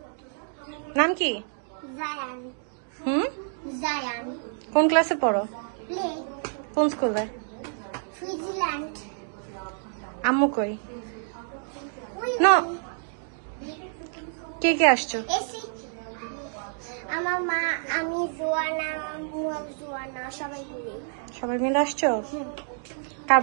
নাম কি? জায়ান। জায়ান। কোন ক্লাসে পড়ো? প্লে। কোন স্কুলে? সুইজারল্যান্ড। আম্মু কই? না, কে কে আসছো? আমার মা, আমি, জোয়ানা, জোয়ানা, সবাই মিলে আসছো? কার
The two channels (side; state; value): left; silent; 59 dB below the other